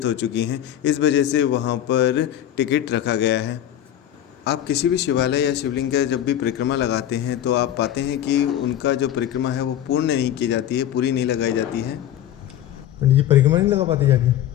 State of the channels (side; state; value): right; quieter; 11.3 dB